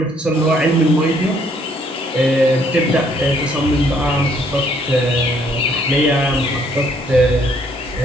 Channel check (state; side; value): normal; both; correlation 0.65